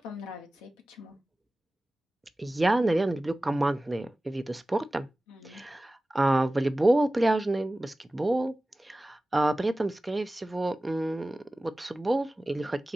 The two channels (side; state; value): both; normal; correlation 0.97